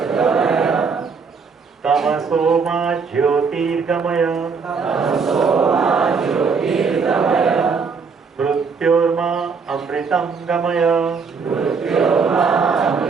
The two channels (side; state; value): left; quieter; 5.3 dB